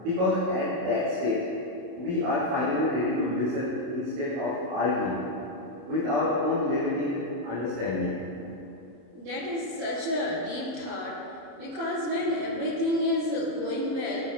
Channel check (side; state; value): left; late; 30 ms